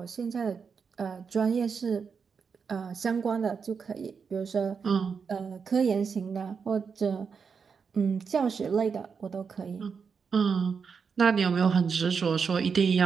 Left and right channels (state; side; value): quieter; left; 5.9 dB